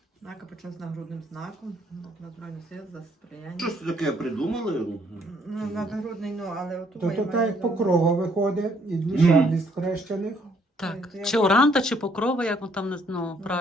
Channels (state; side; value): normal; both; correlation 0.67